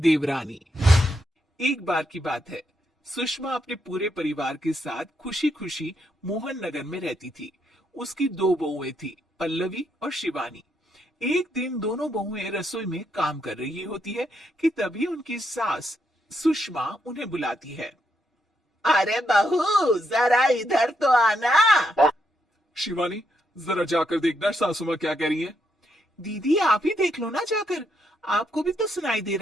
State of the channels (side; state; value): both; normal; correlation 0.79